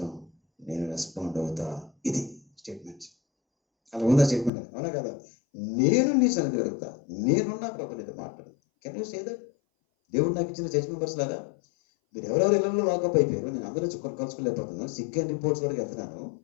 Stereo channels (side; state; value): right; drops out; at 4.5 s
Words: నేను రెస్పాండ్ అవుతా. ఇది స్టేట్మెంట్. అలా ఉందా స్టేట్మెంట్? అవునా కదా? నేను నీ సన్నిధి వెళ్తా, నేనున్నా ప్రభు నీతో మాట్లాడు. Can you say that? దేవుడు నాకు ఇచ్చిన చర్చ్ మెంబర్స్ లాగా మీరు ఎవరెవరు ఇళ్లలో లాకప్ అయిపోయారు, నేను అందరూ కలుసుకోలేకపోతున్నాను, సిక్ అండ్ రిపోర్ట్స్ వరకు వెళ్తున్నాను.